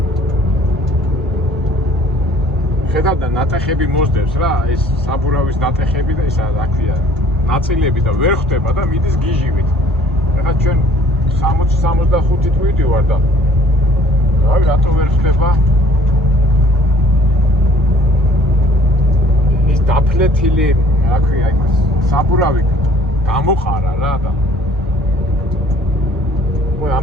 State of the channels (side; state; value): both; normal; correlation 0.55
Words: ხედავ და ნატეხები მოსდევს რა, ეს საბურავის ნატეხები და ისა რა ქვია, ნაწილები და ვერ ხვდება და მიდის გიჟივით. ეხლა ჩვენ 60-65 თვით ვარ და რავი, რატო ვერ ხვდება? ეს დაფლეთილი, რა ქვია, იმას საბურავი გამოყარა რა და მოი